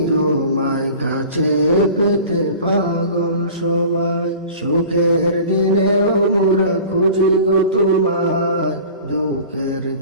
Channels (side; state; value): both; inverted; correlation -0.41